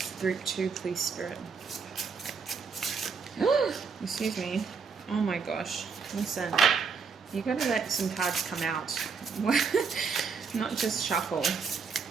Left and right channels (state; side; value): quieter; left; 5.6 dB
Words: Group 2, please, Spirit. Excuse me. Oh my gosh. Listen, you gotta let some cards come out. Not just shuffle.